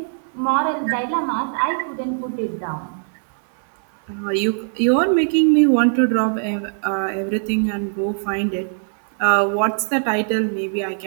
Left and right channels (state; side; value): silent; left; 65 dB below the other